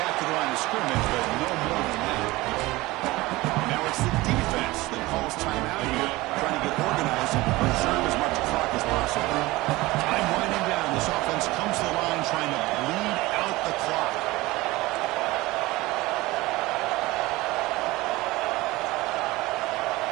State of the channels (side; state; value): left; quieter; 20.1 dB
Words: to the line of scrimmage, but no more than that. Now it's the defense that calls timeout here, trying to get organized and preserve as much clock as possible. Time winding down. This offense comes to the line trying to bleed out the clock.